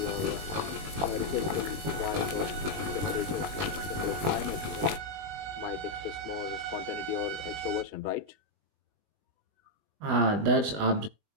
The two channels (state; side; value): late; left; 20 ms